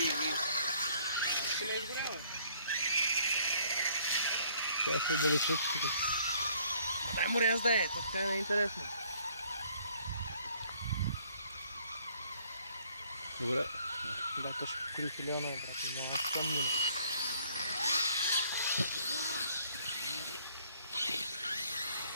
Ще ме изгорява. Това се отдалечат тук. Дай му ряз да е, така не е интересно. Добре. Да, то ще покори филиона, брат. Няма спомням.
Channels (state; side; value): inverted; both; correlation -0.61